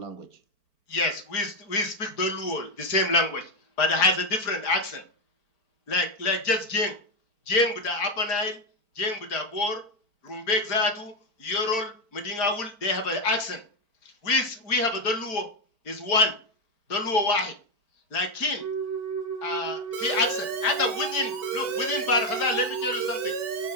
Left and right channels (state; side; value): late; right; 4.5 ms